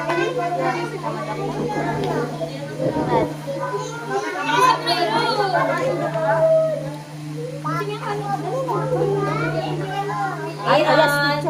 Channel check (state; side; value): identical; both; correlation 1.00